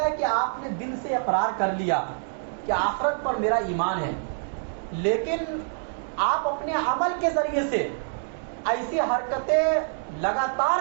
ہے کہ آپ نے دل سے اقرار کر لیا کہ آخرت پر میرا ایمان ہے، لیکن آپ اپنے عمل کے ذریعے سے ایسی حرکتیں لگاتار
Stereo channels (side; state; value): left; silent; digital silence